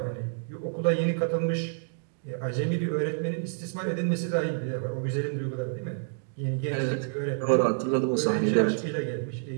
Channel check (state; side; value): silent; left; digital silence